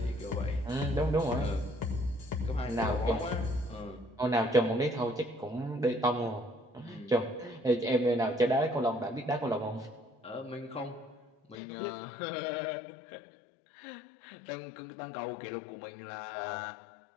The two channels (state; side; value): drops out; right; at 11.6 s